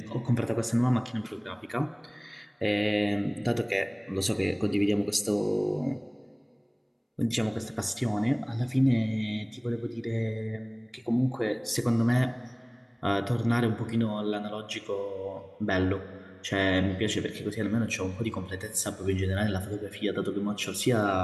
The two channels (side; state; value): both; identical; correlation 1.00